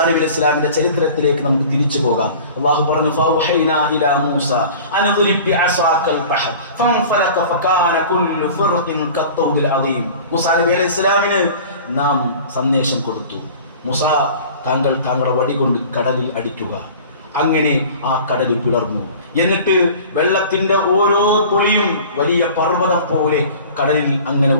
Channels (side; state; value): both; inverted; correlation -0.42